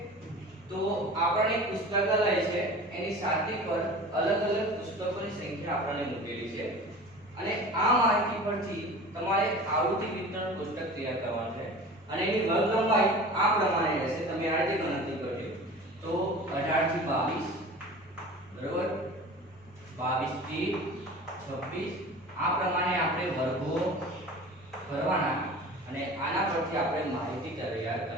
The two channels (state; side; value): noise; left; rumble, 30 dB below the sound